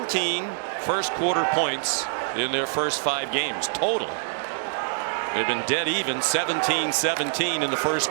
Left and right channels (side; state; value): left; silent; 62 dB below the other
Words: first quarter points in their first 5 games total. They've been dead even, 17-17 in the first